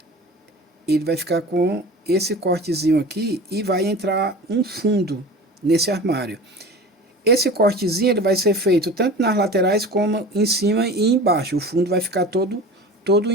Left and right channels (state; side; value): normal; both; correlation 0.36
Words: ele vai ficar com esse cortezinho aqui e vai entrar um fundo nesse armário. Esse cortezinho ele vai ser feito tanto nas laterais como em cima e embaixo. O fundo vai ficar todo